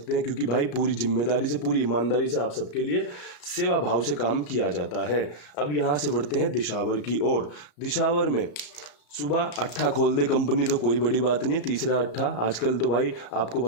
हैं, क्योंकि भाई पूरी जिम्मेदारी से पूरी ईमानदारी से आप सबके लिए सेवा भाव से काम किया जाता है। अब यहाँ से बढ़ते हैं दिशावर की ओर। दिशावर में सुबह अट्ठा खोल दे कंपनी तो कोई बड़ी बात नहीं है। तीसरा अट्ठा आजकल तो भाई आपको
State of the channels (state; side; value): late; right; 34 ms